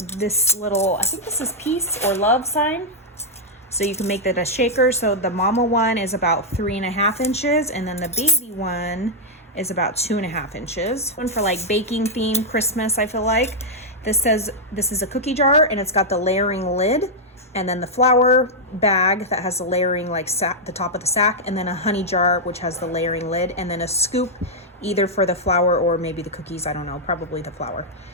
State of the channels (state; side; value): normal; both; correlation -0.04